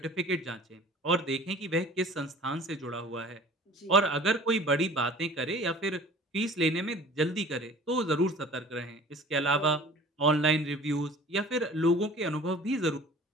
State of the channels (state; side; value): normal; both; correlation 0.45